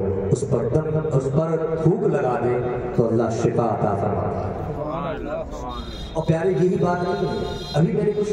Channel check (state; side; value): identical; both; correlation 1.00